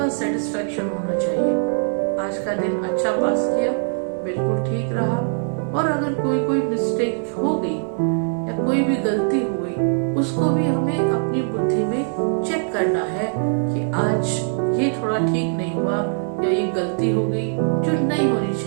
सेटिस्फेक्शन होना चाहिए, आज का दिन अच्छा पास किया, बिल्कुल ठीक रहा। और अगर कोई मिस्टेक हो गई या कोई भी गलती हो गई, उसको भी हमें अपनी बुद्धि में चेक करना है कि आज ये थोड़ा ठीक नहीं हुआ या ये गलती हो गई जो नहीं होनी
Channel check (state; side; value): silent; left; digital silence